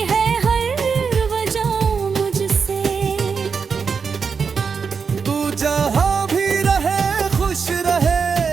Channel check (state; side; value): quieter; left; 5.7 dB